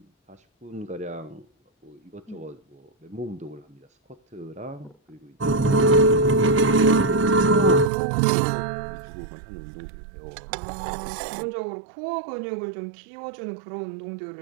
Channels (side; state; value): left; drops out; at 7.9 s